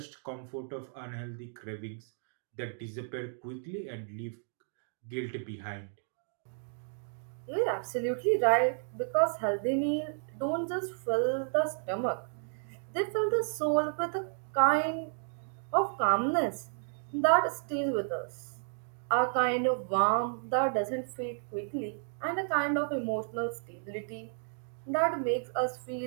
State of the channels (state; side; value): silent; left; digital silence